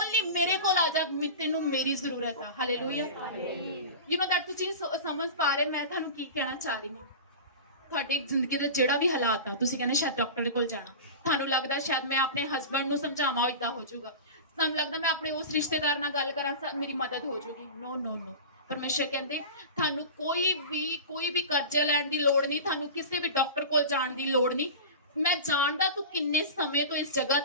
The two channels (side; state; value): both; inverted; correlation -0.30